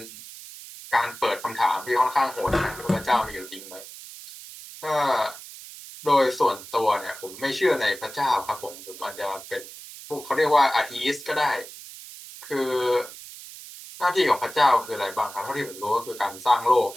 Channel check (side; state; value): right; noise; hiss, 15 dB below the sound